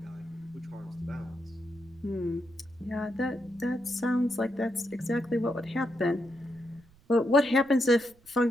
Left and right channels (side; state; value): right; noise; rumble, 28 dB below the sound